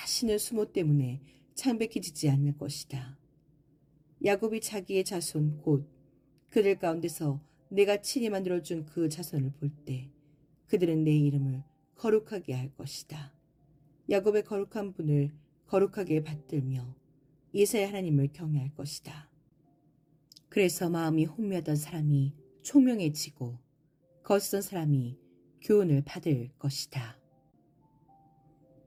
수모 때문에 창백해지지 않을 것이다. 야곱이 자기의 자손 곧 그들 가운데서 내가 친히 만들어준 그 자손을 볼 때 그들은 내 이름을 거룩하게 할 것이다. 야곱의 거룩한 분을 거룩하게 받들며 이스라엘 하나님을 경외할 것이다. 그래서 마음이 혼미하던 사람이 총명해지고 거스던 사람이 교훈을 받을 것이다.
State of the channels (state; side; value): identical; both; correlation 1.00